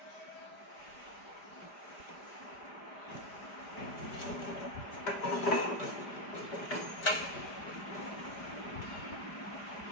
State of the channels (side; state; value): right; late; 5.0 ms